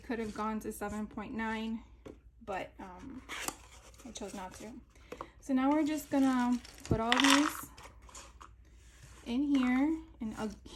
have gone to 7.9, but I chose not to. So now we're just gonna put all these in here, and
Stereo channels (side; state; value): both; identical; correlation 1.00